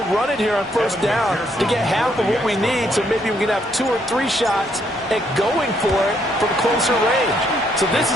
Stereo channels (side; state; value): both; normal; correlation 0.72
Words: run it here on first down to get half of what we need, so maybe we can have 2 or 3 shots at going for it from closer range. So this